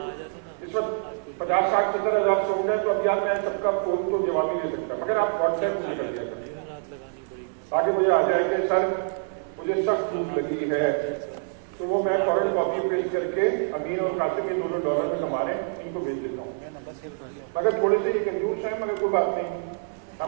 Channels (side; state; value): left; silent; 61 dB below the other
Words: इस वक्त 50-60-70 हजार स्टूडेंट है, तो अब यार मैं सबका फोन तो जवाब ही नहीं सकता, मगर आप व्हाट्सएप में कर दिया आगे मुझे आ जाएंगे, सर मुझे सख्त भूख लगी है, तो वो मैं फौरन कॉपी पेस्ट करके अमीर और कासिम ये दोनों डॉलर में कमा रहे हैं, इनको भेज देता हूँ। मगर थोड़े से ये कंजूस है, मगर कोई बात नहीं,